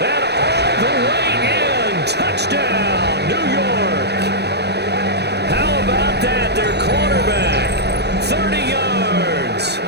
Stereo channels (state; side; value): late; left; 0.48 ms